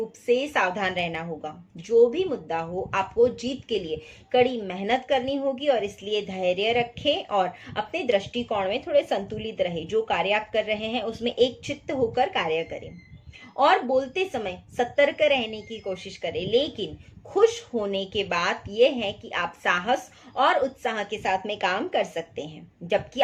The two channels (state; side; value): identical; both; correlation 1.00